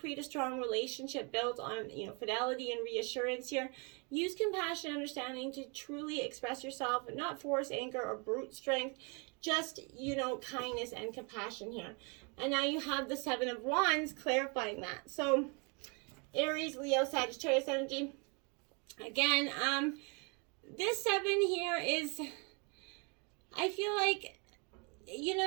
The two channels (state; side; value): quieter; left; 33.3 dB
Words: a strong relationship built on, you know, fidelity and reassurance here. Use compassion and understanding to truly express yourself, and not force anger or brute strength. Just, you know, kindness and compassion here. And now you have the Seven of Wands clarifying that. So Aries, Leo, Sagittarius energy. Again, this 7 here is, I feel like, you